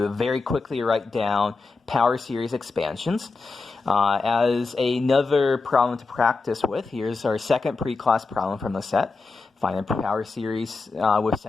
very quickly write down power series expansions. As another problem to practice with, here's our second pre-class problem from the set. Find a power series with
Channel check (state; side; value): quieter; right; 4.0 dB